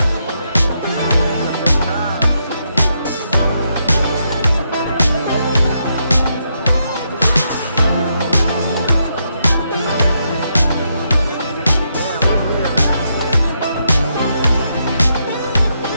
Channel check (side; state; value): both; inverted; correlation -0.80